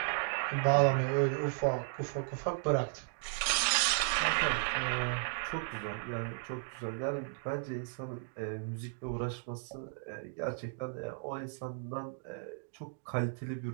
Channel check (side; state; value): left; silent; digital silence